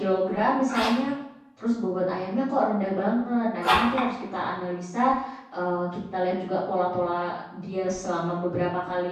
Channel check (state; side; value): identical; both; correlation 1.00